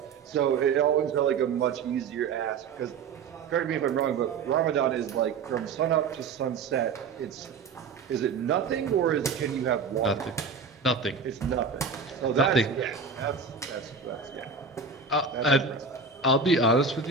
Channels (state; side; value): quieter; left; 5.2 dB